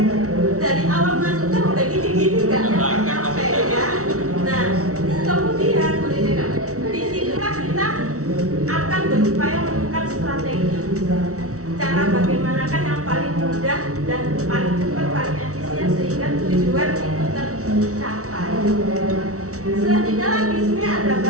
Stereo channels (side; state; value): left; late; 0.64 ms